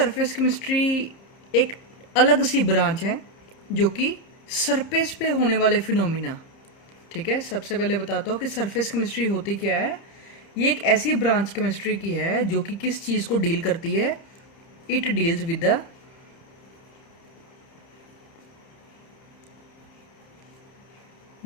केमिस्ट्री एक अलग सी ब्रांच है जो कि सरफेस पे होने वाले फिनोमिना, ठीक है। सबसे पहले बताता हूँ कि सरफेस केमिस्ट्री होती क्या है। ये एक ऐसी ब्रांच केमिस्ट्री की है जो कि किस चीज़ को डील करती है। It deals with the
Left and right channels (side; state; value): right; late; 30 ms